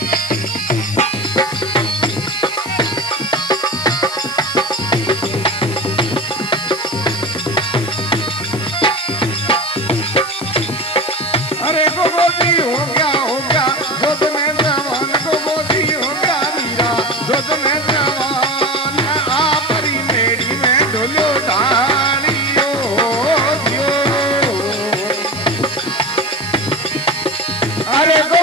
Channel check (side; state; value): left; noise; hiss, 14 dB below the sound